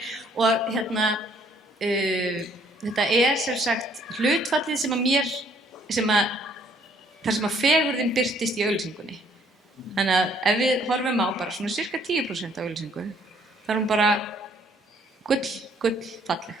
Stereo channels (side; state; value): both; normal; correlation 0.63